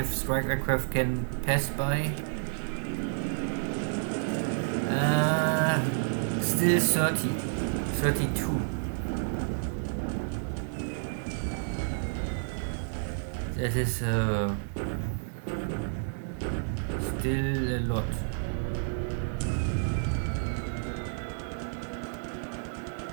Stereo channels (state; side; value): silent; left; digital silence